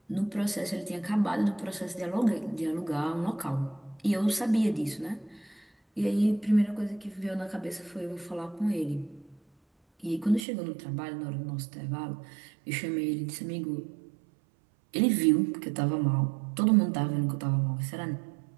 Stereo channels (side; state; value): left; drops out; at 10.5 s